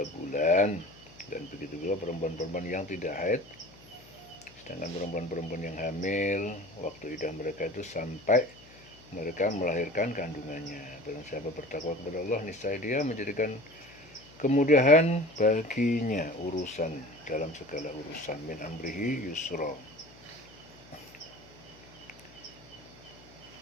bulan. Dan begitu juga perempuan-perempuan yang tidak haid. Sedangkan perempuan-perempuan yang hamil, waktu idah mereka itu sampai mereka melahirkan kandungannya. Barang siapa bertakwa kepada Allah, niscaya dia menjadikan kemudahan baginya urusan dalam segala urusan. Min amrihi yusra.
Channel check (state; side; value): noise; left; hum, 23 dB below the sound